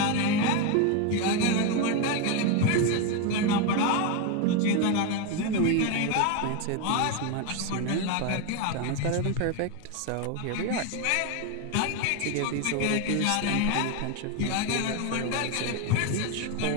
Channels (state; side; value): different; both; correlation 0.02